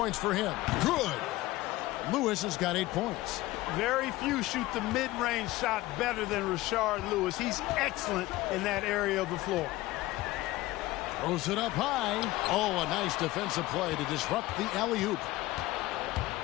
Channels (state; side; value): quieter; right; 18.1 dB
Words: for him. Good. Lewis has got 8 points. Very few shoot the mid-range shot better than Rashard Lewis. He's excellent in that area of the floor. Throws it up high. Oh, a nice defensive play to disrupt the alley-oop.